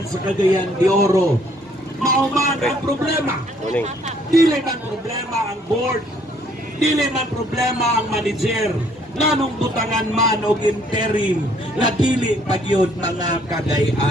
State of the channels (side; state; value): both; normal; correlation 0.63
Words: sa Cagayan de Oro. Mauman ang problema. Dili man problema ang board, dili man problema ang manager, nganong butangan man og interim na dili pagyod mga